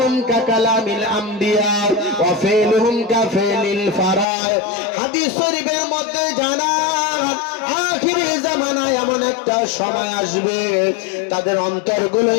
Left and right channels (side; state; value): right; drops out; at 4.2 s